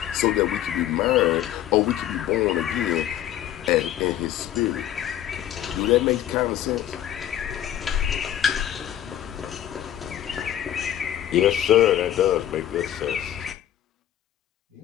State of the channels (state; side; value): quieter; right; 11.6 dB